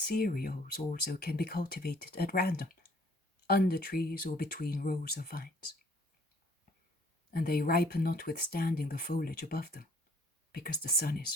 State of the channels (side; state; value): both; normal; correlation 0.59